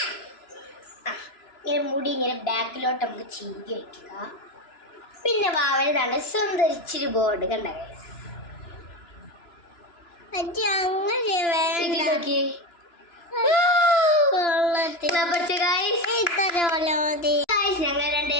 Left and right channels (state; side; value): late; right; 2.9 ms